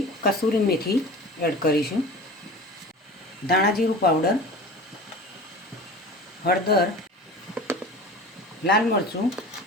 કસૂરી મેથી એડ કરીશું, ધાણા જીરું પાવડર, હળદર, લાલ મરચું,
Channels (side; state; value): both; normal; correlation 0.37